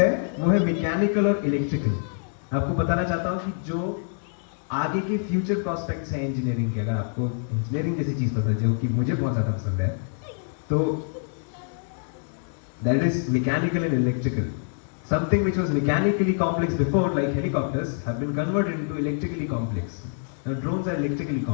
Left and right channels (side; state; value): right; silent; digital silence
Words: वो है मैकेनिकल और इलेक्ट्रिकल। मैं आपको बताना चाहता हूँ कि जो आगे के फ्यूचर प्रोस्पेक्ट्स हैं इंजीनियरिंग के, अगर आपको इंजीनियरिंग जैसी चीज पसंद है जो कि मुझे बहुत ज्यादा पसंद है, तो that is mechanical and electrical. Something which was mechanically complex before, like helicopters, have been converted into electrically complex. Now drones are electrically